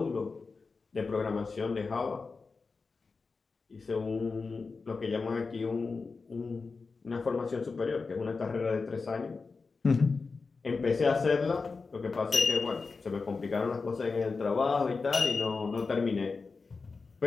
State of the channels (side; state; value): right; quieter; 4.4 dB